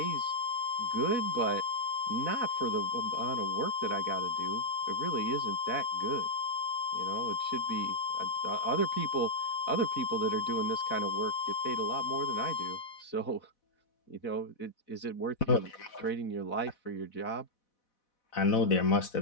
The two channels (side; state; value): right; late; 4.1 ms